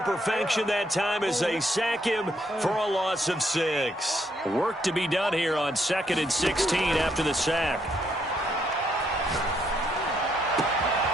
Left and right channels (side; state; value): both; normal; correlation 0.73